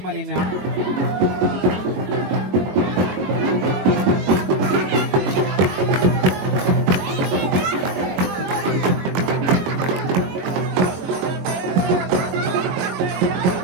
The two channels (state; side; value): late; left; 21 ms